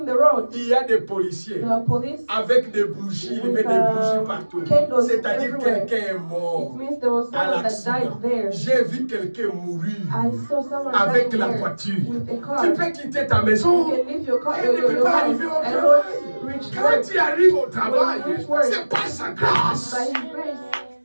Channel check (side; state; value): both; inverted; correlation -1.00